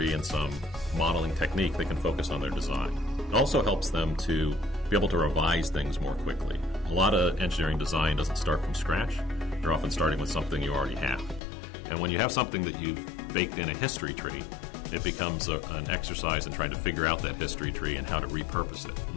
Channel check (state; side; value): drops out; right; at 11.4 s